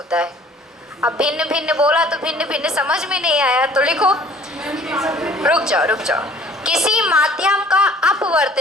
है। अब भिन्न भिन्न बोला तो भिन्न भिन्न समझ में नहीं आया, तो लिखो, रुक जाओ। किसी माध्यम का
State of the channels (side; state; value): both; normal; correlation 0.53